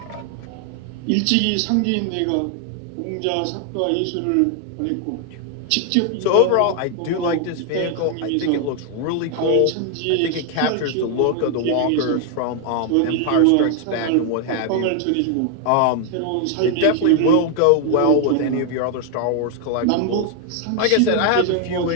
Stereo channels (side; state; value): both; different; correlation 0.00